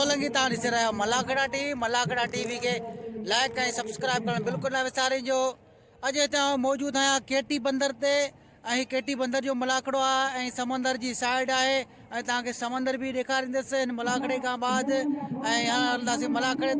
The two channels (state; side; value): identical; both; correlation 1.00